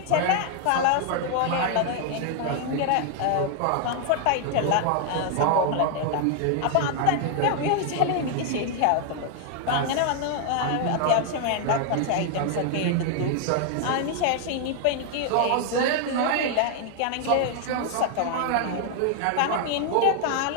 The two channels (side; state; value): both; different; correlation 0.00